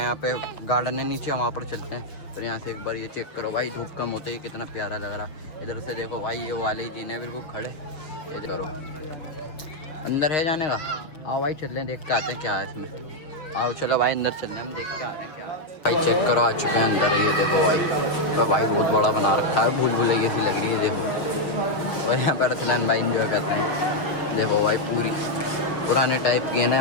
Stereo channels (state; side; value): late; right; 6.4 ms